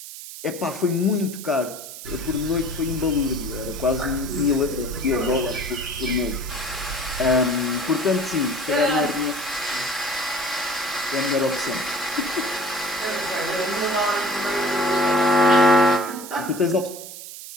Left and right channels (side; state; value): right; noise; hiss, 12 dB below the sound